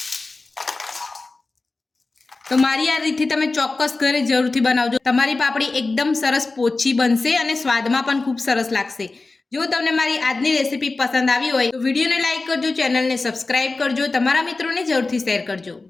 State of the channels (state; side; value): quieter; right; 3.5 dB